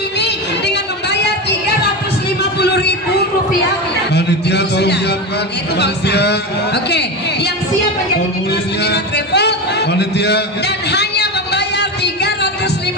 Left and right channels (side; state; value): both; normal; correlation 0.20